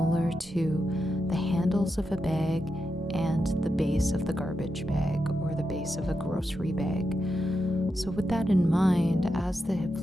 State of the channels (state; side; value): normal; both; correlation 0.87